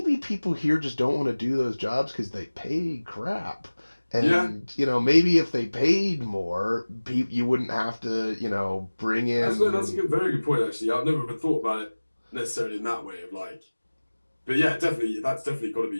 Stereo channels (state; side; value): inverted; both; correlation -1.00